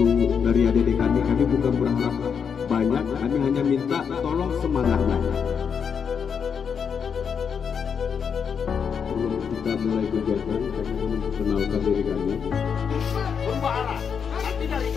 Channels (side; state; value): right; quieter; 6.8 dB